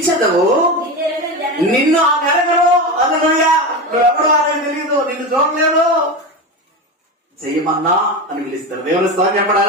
నిన్ను ఆ నెరగరు. హల్లెలూయా. నువ్వెవడో అనేది తెలియదు, నిన్ను చూడలేదు, చెయ్యమన్నా అని పిలుస్తారు. దేవుని స్తోత్రం చెప్పండి.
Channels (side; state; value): both; normal; correlation 0.21